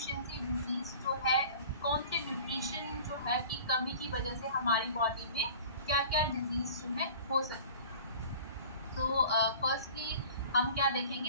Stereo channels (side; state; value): both; inverted; correlation -0.43